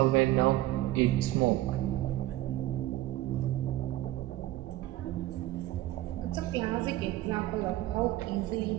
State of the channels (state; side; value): quieter; left; 15.8 dB